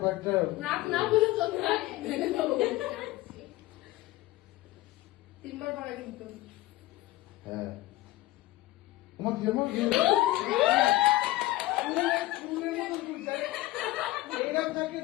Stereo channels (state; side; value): quieter; right; 17.5 dB